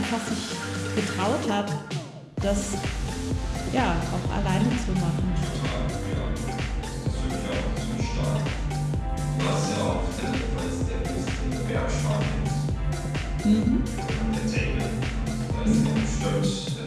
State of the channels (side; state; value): both; identical; correlation 1.00